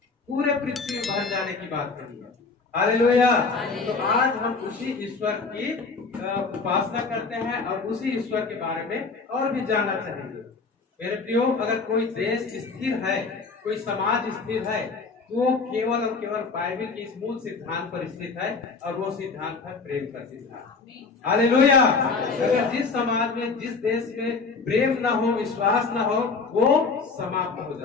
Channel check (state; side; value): quieter; right; 4.4 dB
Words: पूरे पृथ्वी में भर जाने की बात कही है। हालेलुया। तो आज हम उसी ईश्वर की उपासना करते हैं और उसी ईश्वर के बारे में और भी जानना चाहेंगे। मेरे प्रियो, अगर कोई देश स्थिर है, कोई समाज स्थिर है, तो केवल और केवल बाइबल के इस मूल सिद्धांत पर स्थित है और वो सिद्धांत है प्रेम का सिद्धांत। हालेलुया। अगर जिस समाज में, जिस देश में प्रेम न हो, विश्वास न हो, वो समाप्त हो